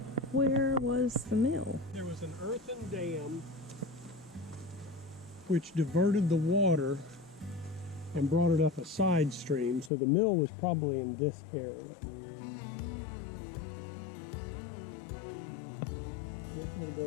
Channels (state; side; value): drops out; right; at 9.9 s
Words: where was the mill? There was an earthen dam which diverted the water and brought it up a side stream, so the mill was probably in this area. This would have